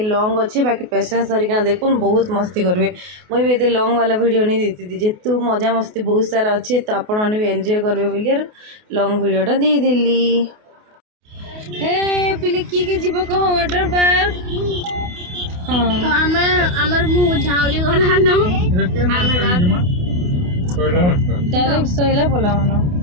लॉन्ग अच्छे बाकी पेशेंस धरिका देखुन बहुत मस्ती करेंगे। मुझे भी ये लॉन्ग वाला वीडियो नहीं देती थी जेतु मजा मस्ती बहुत सारा अच्छे तो आपण मैंने भी एंजॉय करेंगे बोलिए लॉन्ग वीडियोटा दे देली। हे पिले किए जीव कह वाटर पार्क हाँ तो आमर मु झाउली गला न डायरेक्ट सोइला बोला मानो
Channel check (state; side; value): late; left; 28 ms